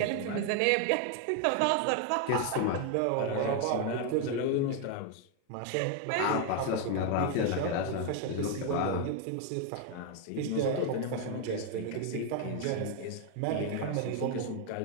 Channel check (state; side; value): different; both; correlation 0.01